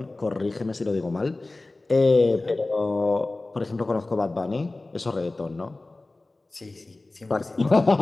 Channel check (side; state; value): right; quieter; 3.0 dB